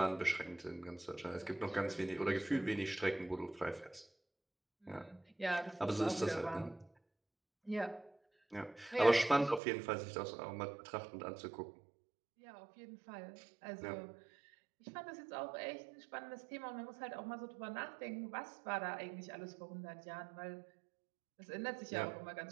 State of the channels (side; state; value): left; drops out; at 9.6 s